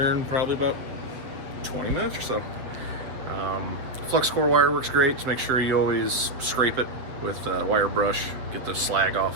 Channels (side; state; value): left; late; 7.7 ms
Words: in probably about 20 minutes or so. Flux core wire works great. Just make sure you always scrape it with a wire brush, get the slag